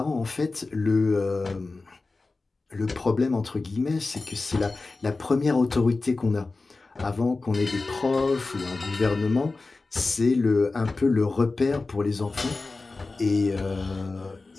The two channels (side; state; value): right; quieter; 3.6 dB